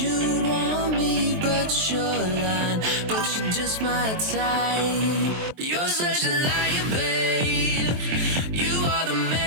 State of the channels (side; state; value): left; late; 23 ms